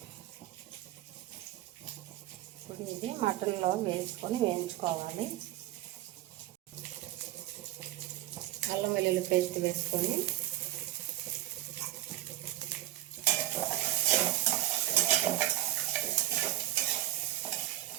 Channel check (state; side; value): quieter; left; 15.0 dB